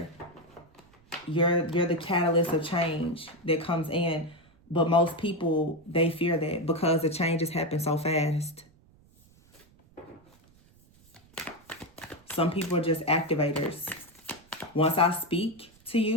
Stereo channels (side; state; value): right; noise; rumble, 29 dB below the sound